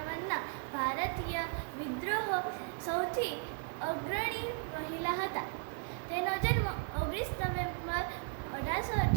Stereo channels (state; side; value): quieter; left; 38.4 dB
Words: ભારતીય વિદ્રોહ સૌથી અગ્રણી મહિલા હતા. તેનો જન્મ 19 નવેમ્બર